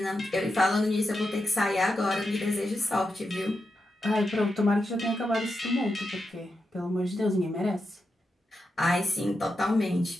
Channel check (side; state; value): both; normal; correlation 0.87